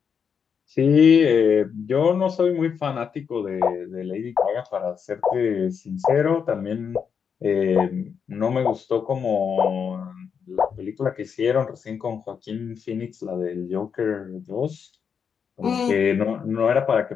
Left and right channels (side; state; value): right; quieter; 6.8 dB